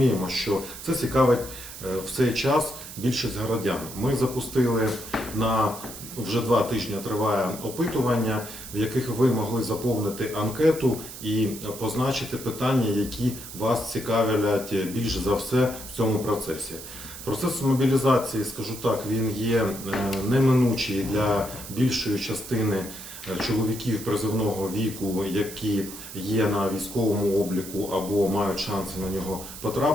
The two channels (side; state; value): right; noise; hiss, 12 dB below the sound